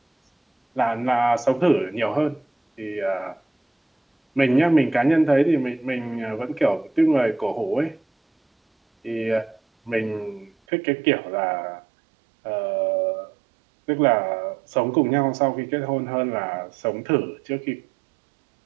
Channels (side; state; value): left; drops out; at 10.5 s